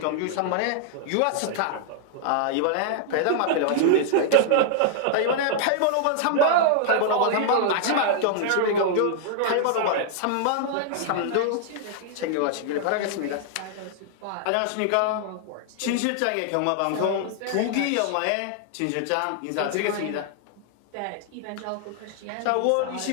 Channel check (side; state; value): both; different; correlation -0.01